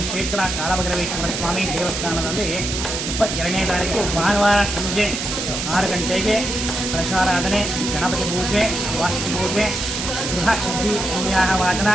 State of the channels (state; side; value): noise; right; hiss, 4 dB below the sound